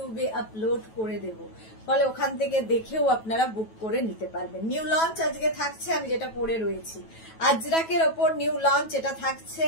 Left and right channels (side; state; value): right; late; 9.2 ms